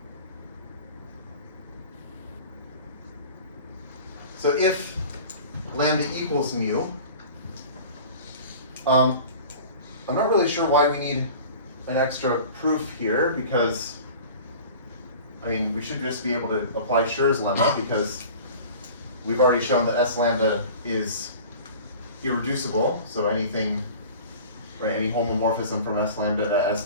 So if lambda equals mu, I'm not really sure why we need an extra proof here, because I mean we should just be able to apply Schur's lemma, because we've already shown that S lambda is irreducible. So anything, right, any homomorphism from S lambda to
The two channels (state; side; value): inverted; both; correlation -0.41